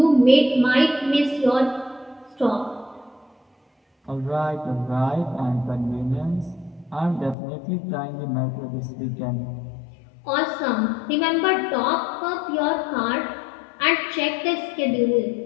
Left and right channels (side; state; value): right; drops out; at 7.4 s